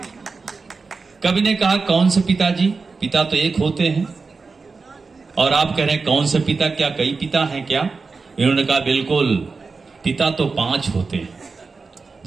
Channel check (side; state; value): left; quieter; 4.4 dB